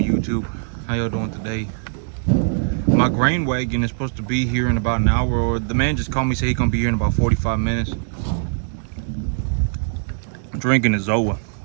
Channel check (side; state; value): left; silent; 63 dB below the other